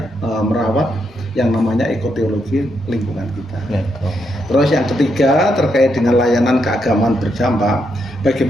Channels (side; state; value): both; normal; correlation 0.80